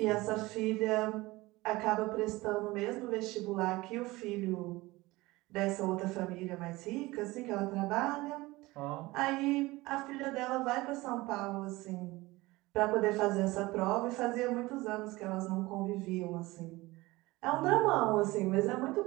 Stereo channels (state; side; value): quieter; left; 20.4 dB